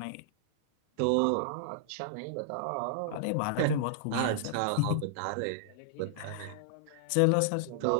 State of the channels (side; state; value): both; different; correlation -0.01